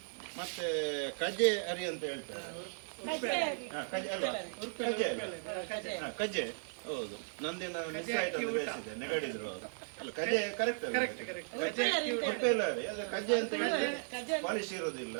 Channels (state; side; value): silent; left; digital silence